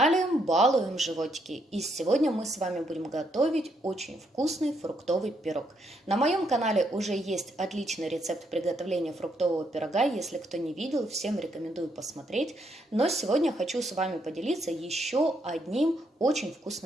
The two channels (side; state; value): both; normal; correlation 0.76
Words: Балуем животики, и сегодня мы с вами будем готовить очень вкусный фруктовый пирог. На моем канале уже есть отличный рецепт приготовления фруктового пирога, если кто не видел, всем рекомендую посмотреть. Но сегодня хочу с вами поделиться еще одним очень